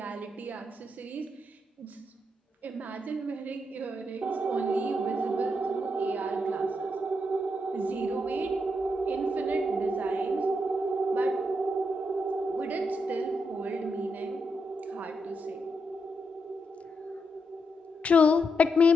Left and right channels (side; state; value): both; normal; correlation 0.82